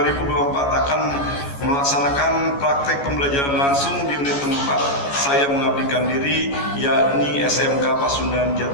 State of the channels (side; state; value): right; late; 14 ms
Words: akan melaksanakan praktek pembelajaran langsung di unit tempat saya mengabdikan diri, yakni SMK Pasundan